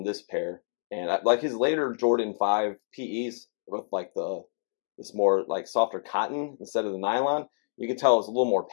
this pair. And like his later Jordan 5 PEs with like this more like softer cotton instead of the nylon, you can tell it's a little more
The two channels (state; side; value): silent; right; digital silence